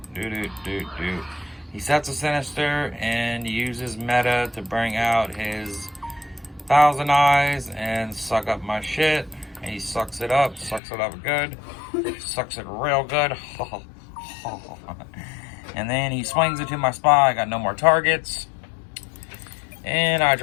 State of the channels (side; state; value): right; drops out; at 10.8 s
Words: He sets a Sinister and uses meta to bring out his Thousand Eyes and suck up my shit. And he sucks it up good. Sucks it real good. And then he swings it to my Spy. I got no more targets. And I